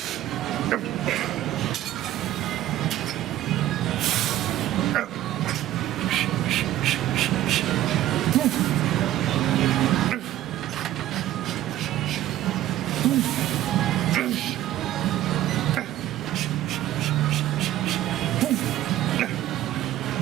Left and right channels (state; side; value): quieter; left; 13.7 dB